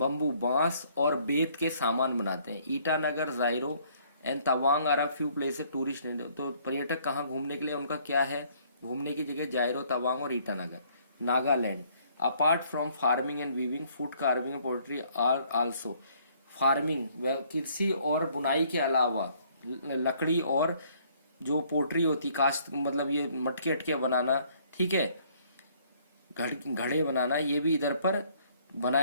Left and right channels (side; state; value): both; inverted; correlation -0.63